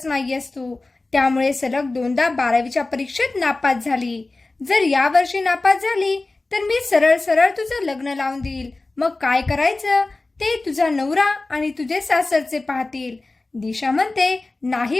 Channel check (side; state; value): right; quieter; 3.2 dB